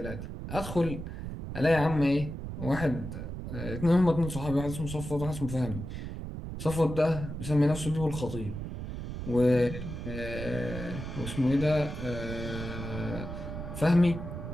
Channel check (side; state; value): right; noise; rumble, 7 dB below the sound